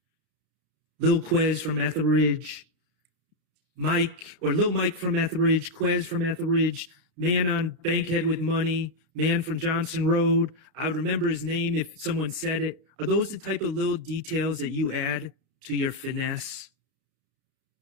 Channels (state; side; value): late; left; 32 ms